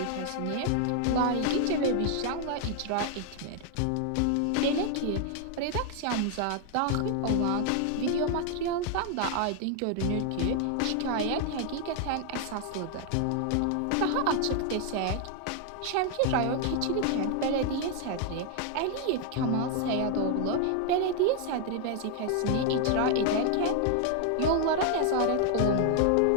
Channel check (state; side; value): different; both; correlation 0.00